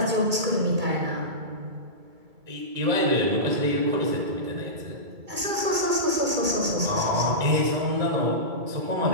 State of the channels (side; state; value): left; late; 2.3 ms